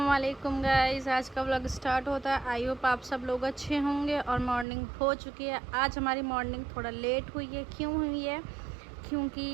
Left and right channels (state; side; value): drops out; left; at 4.7 s